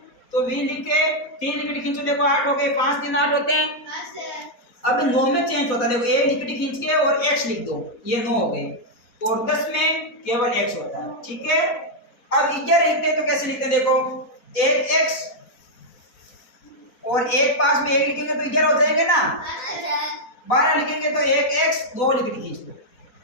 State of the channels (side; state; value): right; late; 4.1 ms